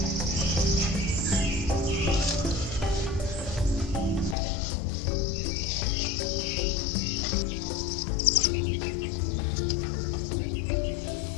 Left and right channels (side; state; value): right; drops out; at 4.4 s